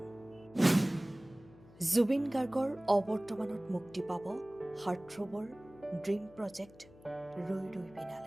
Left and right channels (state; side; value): noise; left; hum, 23 dB below the sound